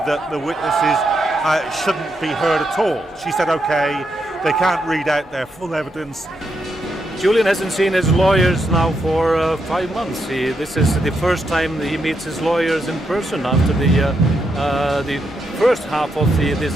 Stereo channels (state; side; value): normal; both; correlation 0.81